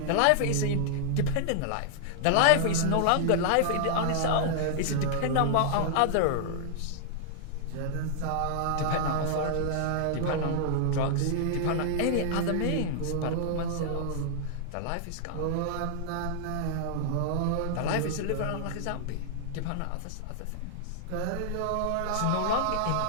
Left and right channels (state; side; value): different; both; correlation -0.01